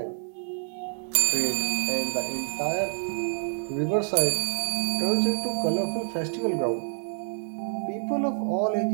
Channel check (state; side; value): silent; left; digital silence